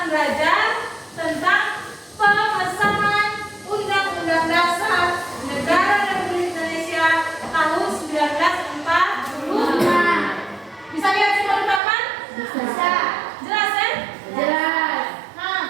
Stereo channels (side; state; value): left; drops out; at 11.8 s